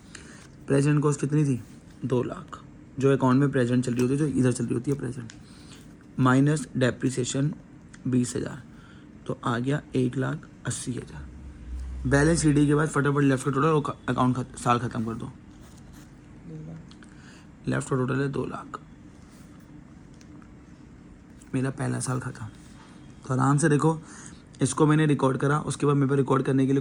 प्रेजेंट कॉस्ट कितनी थी? 2 लाख, जो अकाउंट में प्रेजेंट चल रही होती है, जो इधर चल रही होती है प्रेजेंट, माइनस डेप्रिसिएशन 20,000, तो आ गया 1,80,000। बैलेंस सीडी के बाद फटाफट लेफ्ट का टोटल और अकाउंट साल खत्म कर दो। 2 लाख। लेफ्ट का टोटल है 2 लाख। मेरा पहला साल खत्म। तो आराम से देखो, इसको मैंने रिकॉर्ड करा, उसके बाद मेरे पास रिकॉर्ड करने के लिए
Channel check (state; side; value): identical; both; correlation 1.00